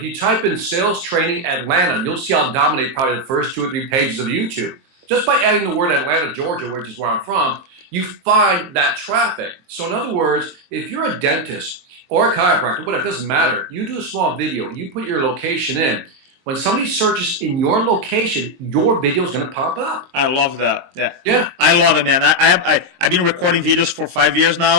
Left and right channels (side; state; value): left; late; 23 ms